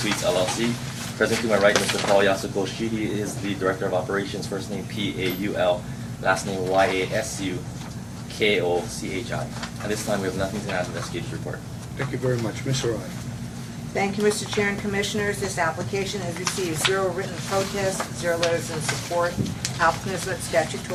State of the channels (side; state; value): both; identical; correlation 1.00